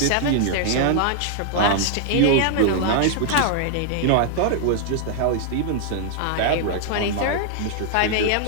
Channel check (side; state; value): both; different; correlation 0.00